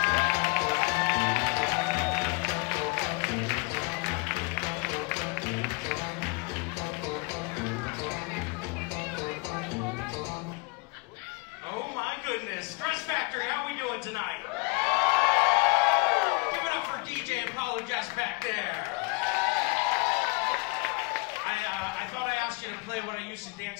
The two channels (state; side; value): quieter; right; 27.3 dB